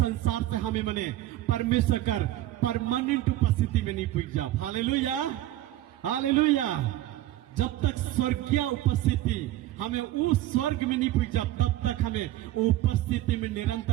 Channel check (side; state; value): left; quieter; 14.9 dB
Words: से हमें मने परमेश्वर कर परमानेंट उपस्थिति में नहीं पहुंच जा। Hallelujah, hallelujah. जब तक स्वर्गीय उपस्थिति हमें उस स्वर्ग में नहीं पहुंचा, तब तक हमें उपस्थिति में